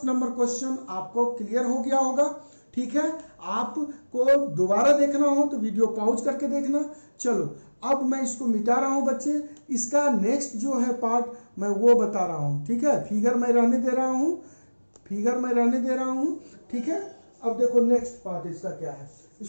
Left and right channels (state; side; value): inverted; both; correlation -1.00